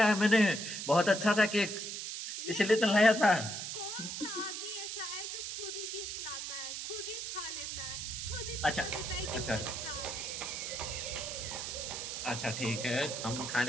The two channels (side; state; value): right; noise; hiss, 5 dB below the sound